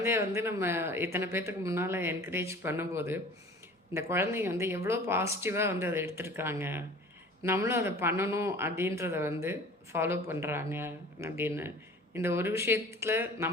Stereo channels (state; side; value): normal; both; correlation 0.44